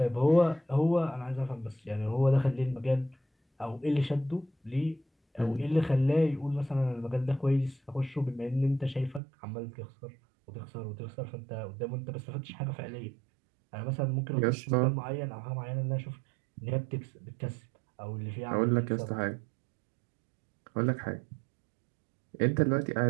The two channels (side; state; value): left; drops out; at 9.2 s